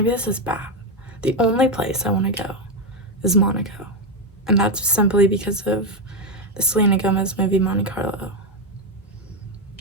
this is bad. The only place I want to go is Monaco. And that's simply because of the Selena Gomez movie Monte Carlo.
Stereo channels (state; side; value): normal; both; correlation 0.07